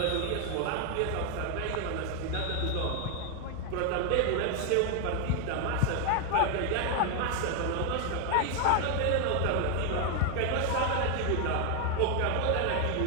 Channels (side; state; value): both; different; correlation 0.00